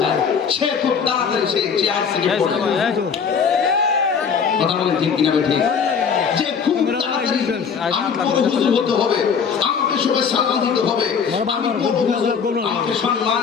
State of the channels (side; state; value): right; quieter; 6.4 dB